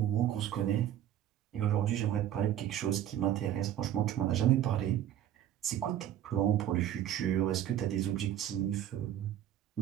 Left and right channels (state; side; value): quieter; left; 11.4 dB